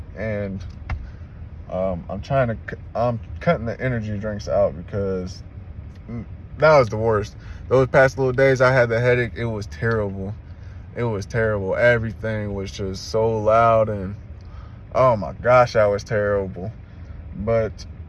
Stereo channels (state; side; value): identical; both; correlation 1.00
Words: And I'm cutting the energy drinks out because that was the worst. Those past little days I had the headache. It was terrible. It was terrible. Everything was just so loud, and oh my gosh, that was terrible. But